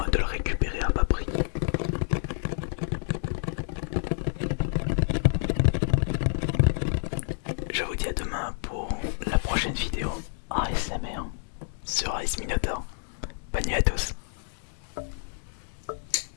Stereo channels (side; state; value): right; silent; 59 dB below the other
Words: de le récupérer à bas prix. Je vous dis à demain pour la prochaine vidéo ASMR sur Ice Minotaur. Bonne nuit à tous.